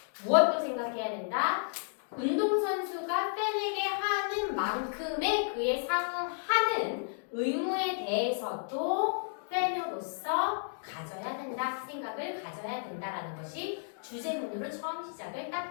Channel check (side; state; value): right; silent; digital silence